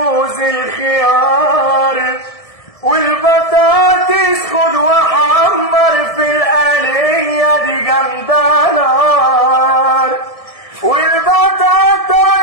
الخيار، والبطاطس خد وحمر في القلية دي جامدة نار، والبطاطا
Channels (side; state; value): right; late; 1.7 ms